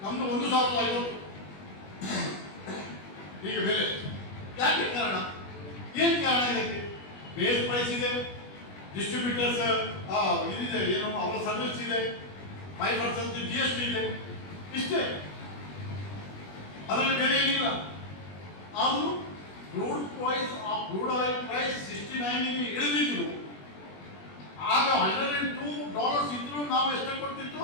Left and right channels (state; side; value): late; right; 21 ms